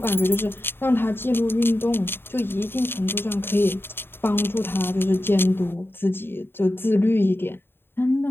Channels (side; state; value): right; late; 0.11 ms